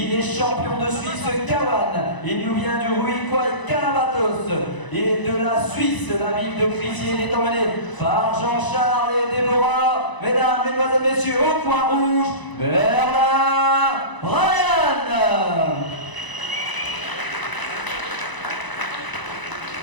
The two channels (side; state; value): right; late; 1.0 ms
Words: est champion de Suisse Kawan. Il nous vient du Ruiquay Calabatos. Et de la Suisse, la ville de Crissier, il est emmené par Jean-Charles et Déborah. Mesdames, mesdemoiselles, messieurs, au coin rouge, Bernard Ryan.